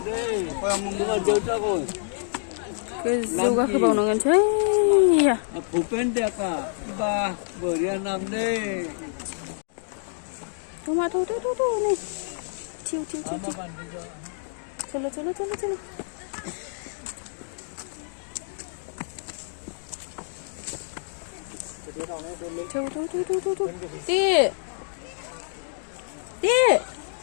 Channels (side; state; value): right; silent; digital silence